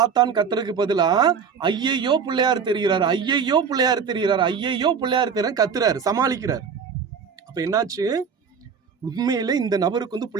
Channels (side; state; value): left; quieter; 6.4 dB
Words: ஆத்தான் கத்துறதுக்கு பதிலா ஐயையோ பிள்ளையார் தெரிகிறாரு, ஐயையோ பிள்ளையார் தெரிகிறாரு, ஐயையோ பிள்ளையார் தெரியாரு கத்துறாரு, சமாளிக்கிறார். அப்ப என்னாச்சு, உண்மையில இந்த நபருக்கு வந்து